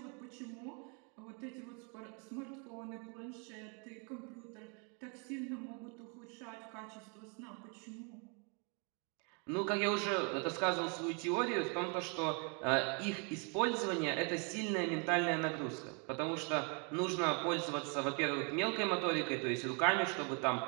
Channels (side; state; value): left; quieter; 36.1 dB